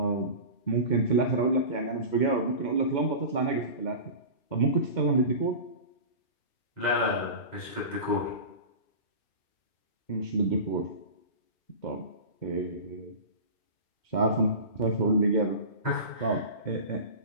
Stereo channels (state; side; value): late; right; 2.1 ms